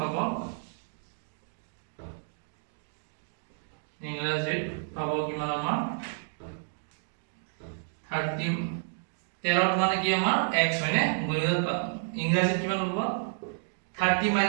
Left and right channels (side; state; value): left; silent; digital silence